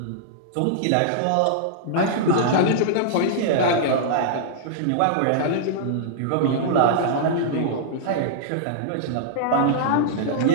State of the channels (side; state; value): both; different; correlation -0.02